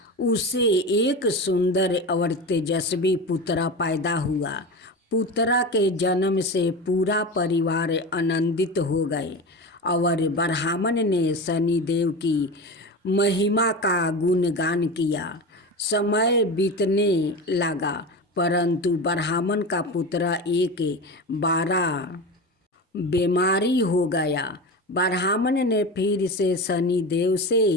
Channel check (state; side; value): normal; both; correlation 0.26